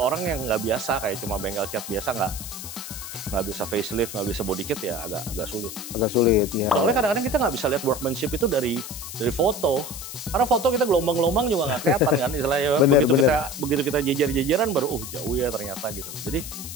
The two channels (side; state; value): left; noise; hiss, 10 dB below the sound